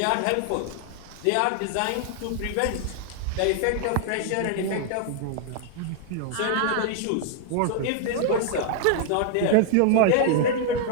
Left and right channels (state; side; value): different; both; correlation 0.00